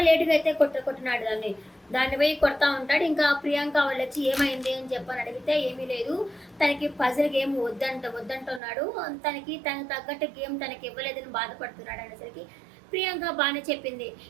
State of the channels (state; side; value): drops out; left; at 8.6 s